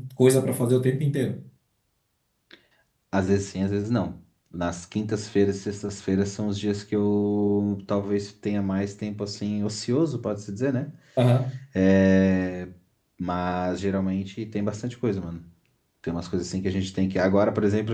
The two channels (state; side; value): identical; both; correlation 1.00